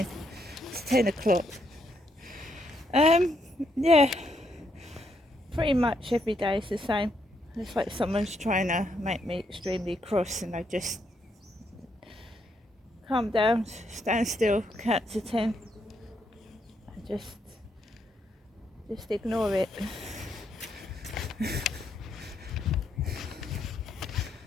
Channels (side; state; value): both; normal; correlation 0.76